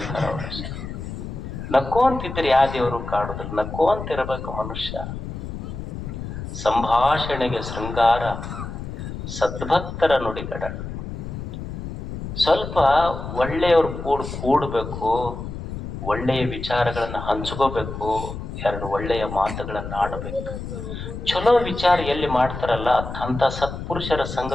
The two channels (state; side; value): noise; left; rumble, 7 dB below the sound